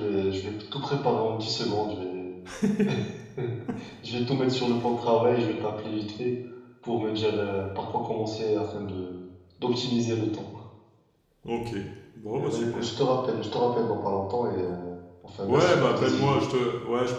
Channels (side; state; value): both; identical; correlation 1.00